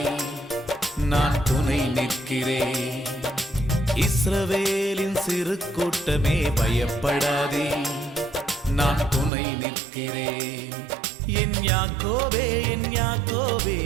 நான் துணை நிற்கிறேன். இஸ்ரவேலின் சிறு கூட்டமே பயப்படாதே, நான் துணை நிற்கிறேன். என் யாக்கோபே என் யாக்கோபே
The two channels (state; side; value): drops out; left; at 9.3 s